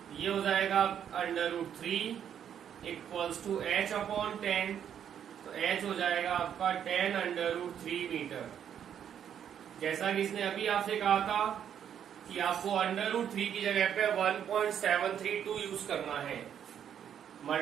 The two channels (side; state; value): left; quieter; 9.0 dB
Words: ये हो जाएगा √3 इक्वल्स टू h अपॉन 10, तो h हो जाएगा आपका 10 √3 मीटर। जैसा कि इसने अभी आपसे कहा था कि आपको √3 की जगह पे 1.732 यूज करना है,